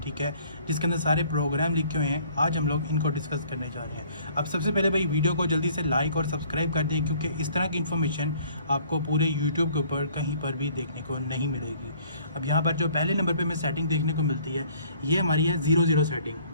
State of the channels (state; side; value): inverted; both; correlation -0.57